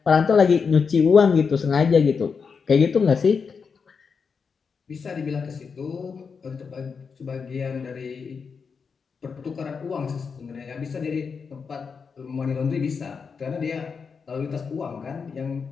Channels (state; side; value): quieter; right; 5.7 dB